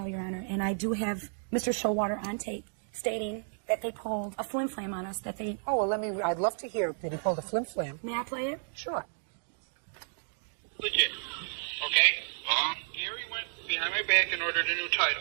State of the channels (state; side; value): silent; left; digital silence